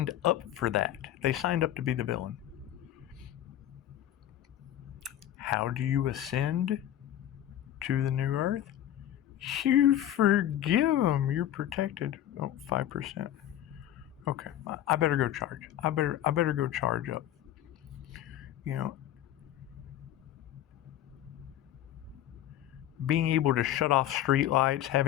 up for that. They signed up to be the villain. How do you ascend to the new earth? You forgive them. You're protected. Oh, 5%. Okay, I better go charge. I better go charge up. You know, being able to shut off streetlights,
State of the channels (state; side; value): quieter; right; 12.1 dB